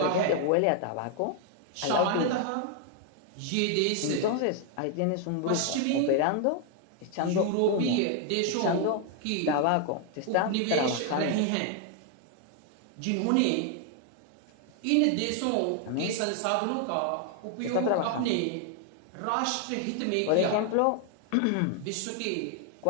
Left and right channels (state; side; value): different; both; correlation 0.00